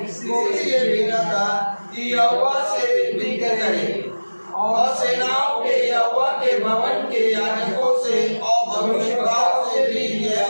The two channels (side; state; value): both; inverted; correlation -1.00